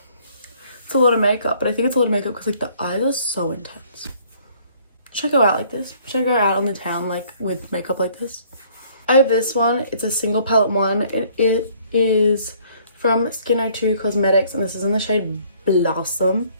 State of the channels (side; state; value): both; inverted; correlation -0.60